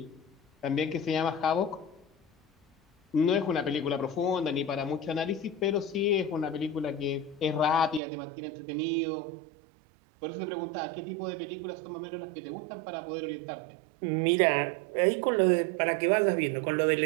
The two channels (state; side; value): drops out; left; at 8.0 s